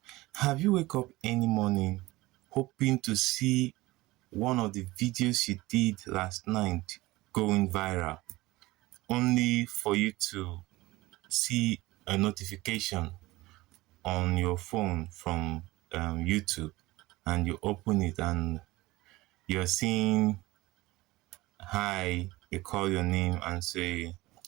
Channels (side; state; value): left; quieter; 19.7 dB